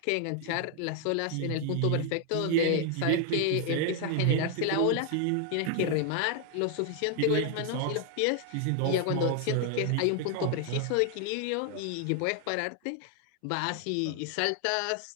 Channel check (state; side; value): different; both; correlation 0.00